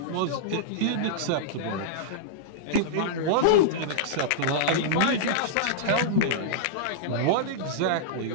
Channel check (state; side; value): different; both; correlation -0.03